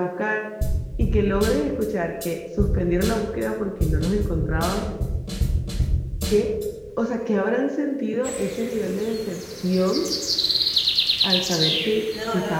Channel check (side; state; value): both; identical; correlation 1.00